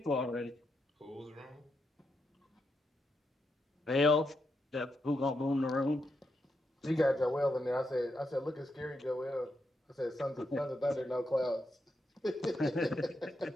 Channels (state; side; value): normal; both; correlation 0.83